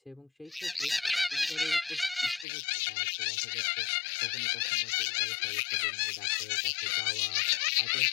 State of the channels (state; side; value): drops out; right; at 2.5 s